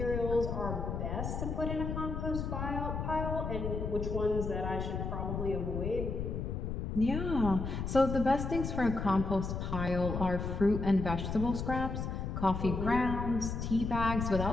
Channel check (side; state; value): left; noise; rumble, 3 dB below the sound